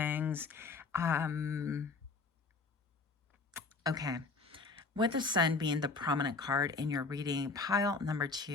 Okay. With the sun being the prominent card in your reading, pile number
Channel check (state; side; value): quieter; right; 4.3 dB